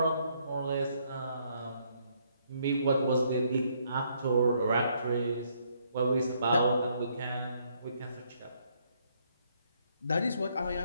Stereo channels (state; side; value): inverted; both; correlation -0.71